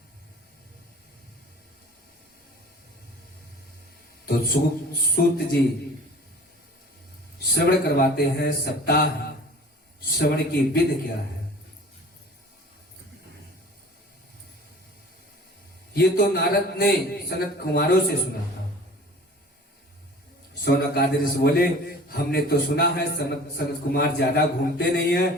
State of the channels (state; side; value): normal; both; correlation 0.44